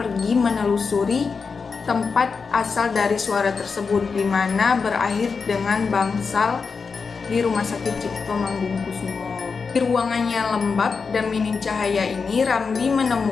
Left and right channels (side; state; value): right; quieter; 5.1 dB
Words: menelusuri tempat asal dari suara tersebut, di mana berakhir dengan bangsal di Rumah Sakit Cipto Mangunkusumo. Di ruangan yang lembab dan minim cahaya ini, Ramli